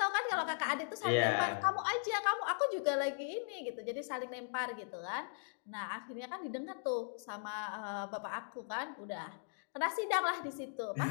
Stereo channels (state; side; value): silent; right; digital silence